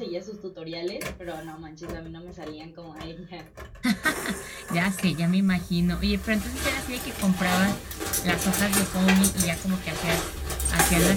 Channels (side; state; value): both; identical; correlation 1.00